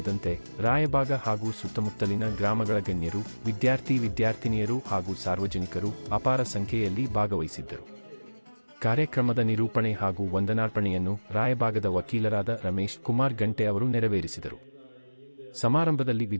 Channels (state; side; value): inverted; both; correlation -1.00